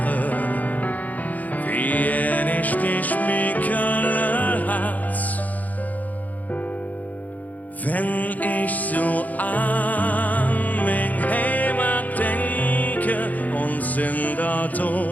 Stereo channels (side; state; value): right; late; 0.078 ms